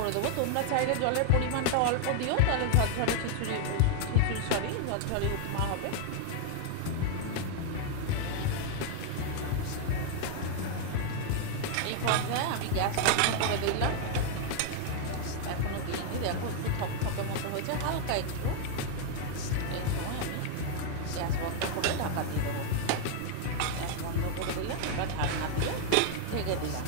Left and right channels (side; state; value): both; different; correlation 0.00